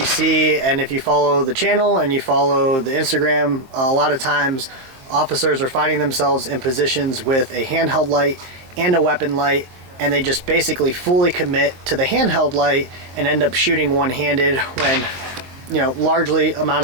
see, and if you follow the channel and you follow the Instagram, a lot of times officers are finding themselves in positions with a handheld light and a weapon light, and they just basically fully commit to the handheld light and end up shooting one-handed when, you know, largely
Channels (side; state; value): left; late; 23 ms